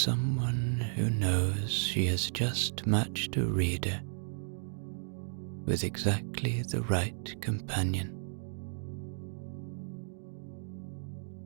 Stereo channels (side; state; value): left; silent; digital silence